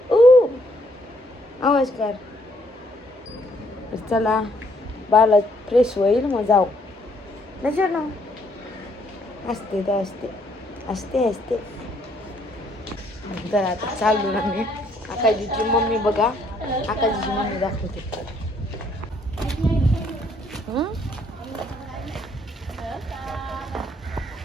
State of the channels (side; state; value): both; normal; correlation 0.68